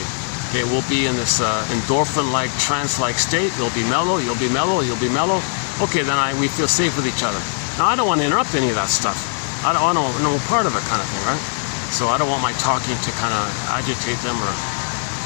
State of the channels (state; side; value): silent; right; digital silence